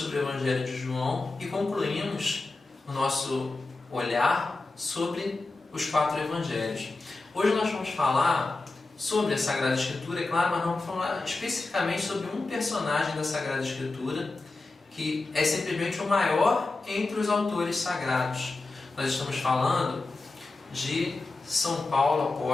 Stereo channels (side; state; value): right; quieter; 3.4 dB